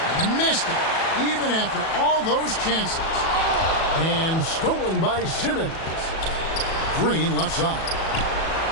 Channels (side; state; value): right; late; 37 ms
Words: Missed it, even after all those chances. And stolen by Simmons. Green left side.